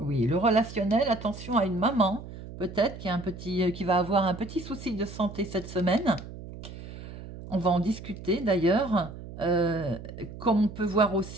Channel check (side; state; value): right; noise; hum, 13 dB below the sound